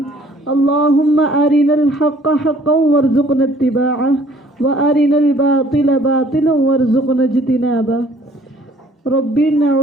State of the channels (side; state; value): both; normal; correlation 0.57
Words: اللہم ارنا الحق حقا وارزقنا اتباعہ وارنا الباطل باطلا وارزقنا اجتنابہ. ربی